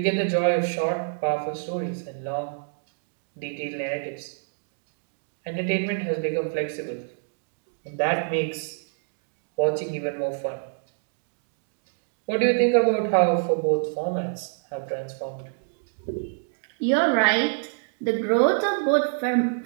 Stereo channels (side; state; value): left; silent; digital silence